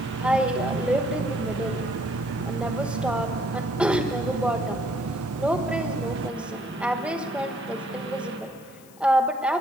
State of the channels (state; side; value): noise; left; hiss, 24 dB below the sound